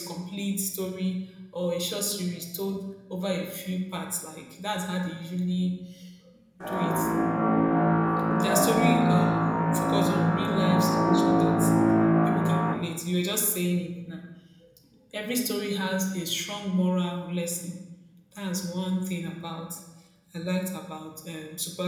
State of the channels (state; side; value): identical; both; correlation 1.00